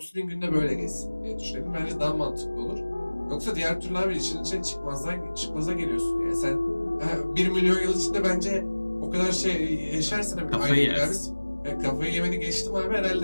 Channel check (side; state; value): both; inverted; correlation -1.00